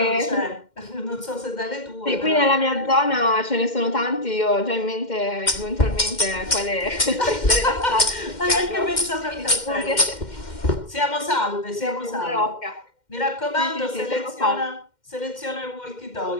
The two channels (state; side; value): late; right; 2.1 ms